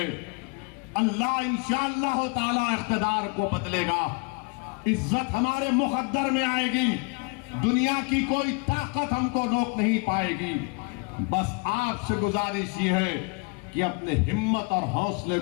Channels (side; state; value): right; quieter; 31.8 dB